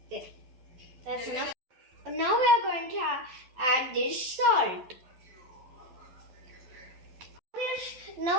There, that's enough. Now we are going to add this salt.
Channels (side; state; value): left; late; 12 ms